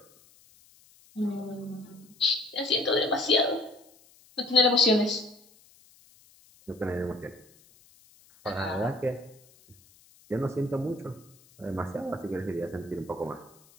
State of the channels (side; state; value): left; noise; hiss, 28 dB below the sound